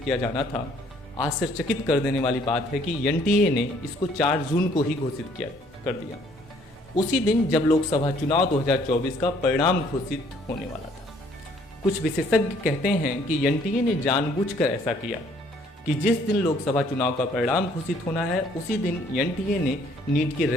किया जाना था, आश्चर्यचकित कर देने वाली बात है कि NTA ने इसको 4 जून को ही घोषित कर दिया, उसी दिन जब लोकसभा चुनाव 2024 का परिणाम घोषित होने वाला था। कुछ विशेषज्ञ कहते हैं कि NTA ने जानबूझकर ऐसा किया कि जिस दिन लोकसभा चुनाव का परिणाम घोषित होना है, उसी दिन NTA ने नीट के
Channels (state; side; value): normal; both; correlation 0.62